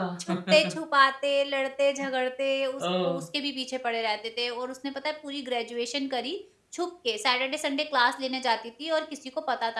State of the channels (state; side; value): identical; both; correlation 1.00